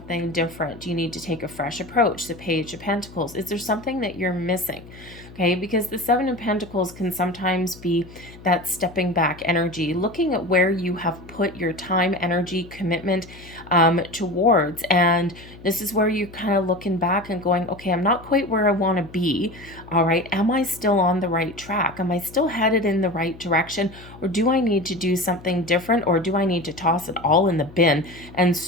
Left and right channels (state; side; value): noise; left; hum, 19 dB below the sound